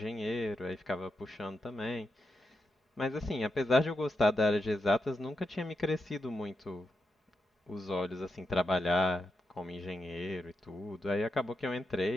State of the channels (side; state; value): both; normal; correlation 0.86